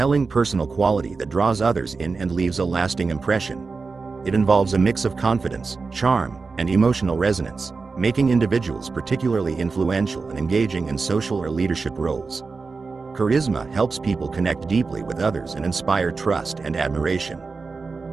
personal quality that draws others in and leaves a lasting impression. It involves a mix of confidence, charm, and emotional resonance, making individuals particularly influential and engaging in social or leadership roles. Charisma helps people connect deeply with others and inspire trust and admiration.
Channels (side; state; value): left; quieter; 4.4 dB